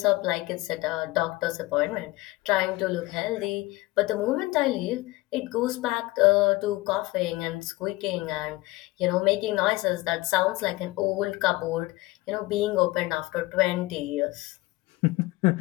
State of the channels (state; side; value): quieter; right; 20.2 dB